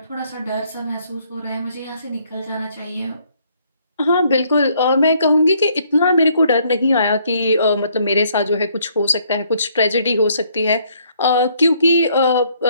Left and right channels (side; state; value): both; inverted; correlation -0.67